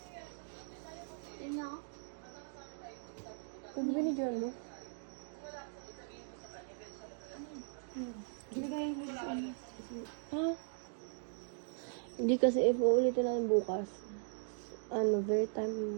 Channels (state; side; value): silent; left; digital silence